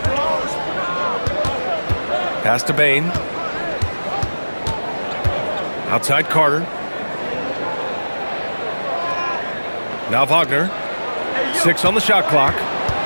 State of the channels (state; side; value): inverted; both; correlation -1.00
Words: Pass to Bain. Outside Carter. Now Wagner. 6 on the shot clock.